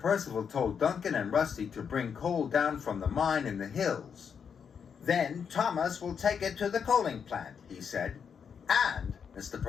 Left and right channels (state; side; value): quieter; right; 6.9 dB